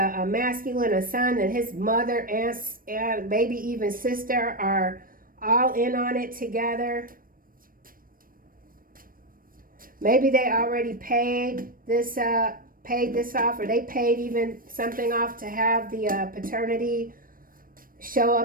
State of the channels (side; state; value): left; late; 0.41 ms